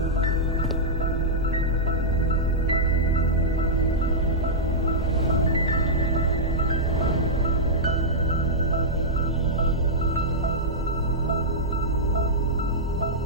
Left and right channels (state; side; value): normal; both; correlation -0.10